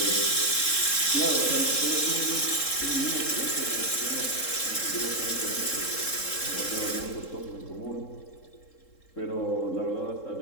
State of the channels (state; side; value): late; right; 3.7 ms